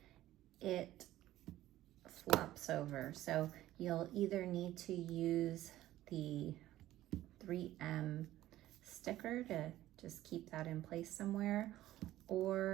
it flops over. So you'll either need to use the 3M sticker to just keep that in place somewhere,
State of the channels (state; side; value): quieter; left; 14.6 dB